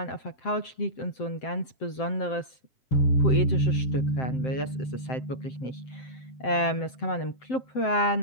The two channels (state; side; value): late; right; 7.7 ms